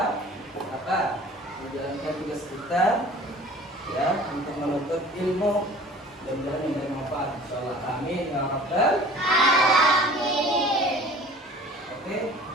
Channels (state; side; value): normal; both; correlation 0.46